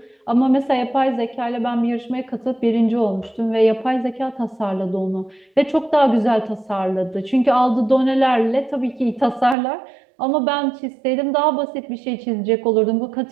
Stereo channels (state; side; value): drops out; left; at 9.6 s